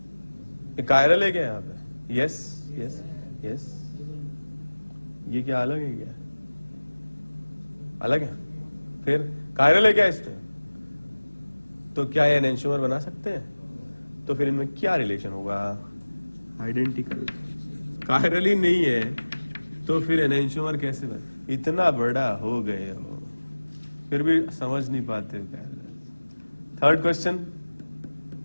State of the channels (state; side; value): inverted; both; correlation -1.00